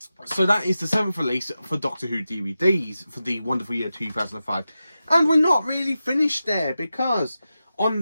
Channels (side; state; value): both; inverted; correlation -0.92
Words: So that is the 7th release for Doctor Who DVDs for the wonderful year 2005. And we're not really finished there, because on